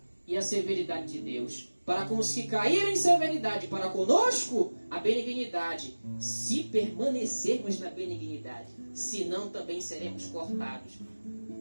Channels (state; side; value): inverted; both; correlation -1.00